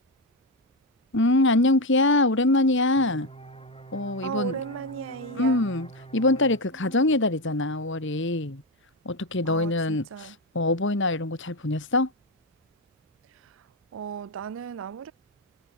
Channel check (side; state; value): both; normal; correlation 0.10